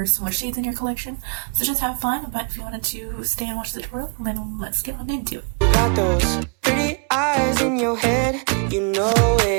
some more shades in your collection. So just have fun, but if you wanted to stay and watch the tutorial, then let's get on into it. You got those pretty eyes in your head, you know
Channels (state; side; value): quieter; left; 37.5 dB